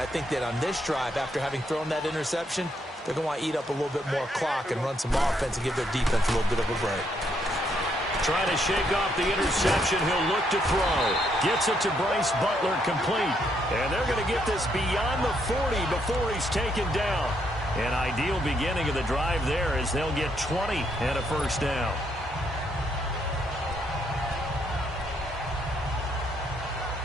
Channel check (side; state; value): both; normal; correlation 0.74